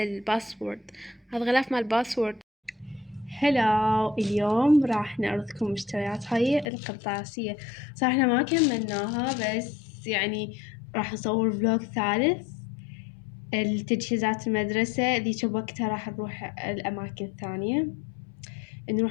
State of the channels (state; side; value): drops out; right; at 6.7 s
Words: الباسورد، هذا غلاف مال باسورد. هلا، اليوم راح نعرضكم مشتريات هاي القرطاسية. صراحة احنا ما كملناها، بس يعني راح نصور فلوج ثالث التجهيزات المدرسة. ذيك بوقتها راح نروح الأماكن الثانية،